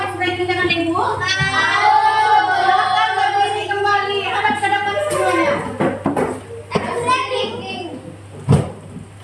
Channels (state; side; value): identical; both; correlation 1.00